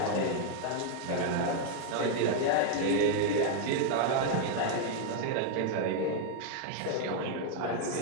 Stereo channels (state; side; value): different; both; correlation 0.00